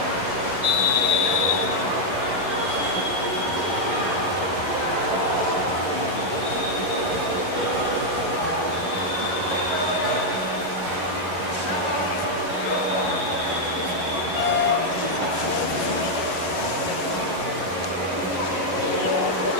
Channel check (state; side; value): late; left; 11 ms